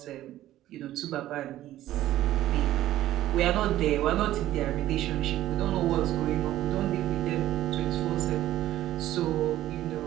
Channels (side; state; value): left; quieter; 13.9 dB